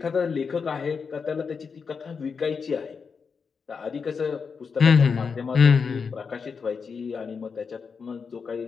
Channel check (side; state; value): right; quieter; 5.6 dB